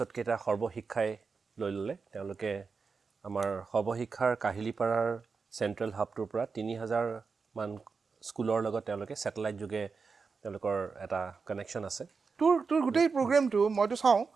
কেইটা সৰ্বশিক্ষাই লৈ ল'লে তেওঁলোকে আমাৰ সৰ্বশিক্ষাৰ কাহিলীপাৰাৰ চেণ্ট্ৰেল হাবটোৰ পৰা 3000 মান স্কুলৰ লগত তেওঁলোকে স্যাটেলাইট যোগে তেওঁলোকৰ এটা কানেকশ্যন আছে তোৰ গোটেই প্ৰগ্ৰামটো মইতো চাওঁ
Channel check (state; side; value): quieter; left; 5.0 dB